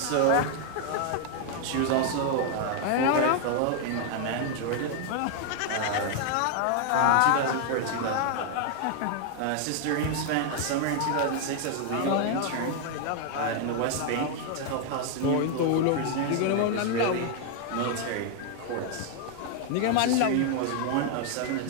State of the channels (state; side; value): different; both; correlation 0.00